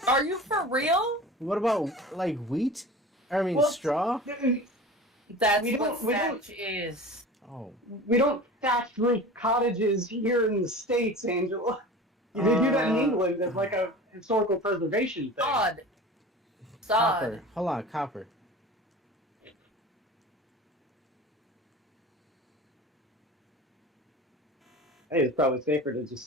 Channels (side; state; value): both; normal; correlation 0.36